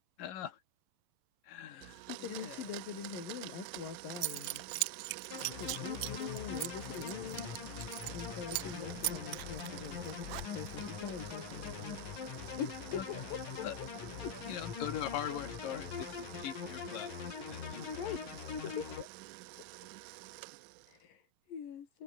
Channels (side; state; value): right; late; 11 ms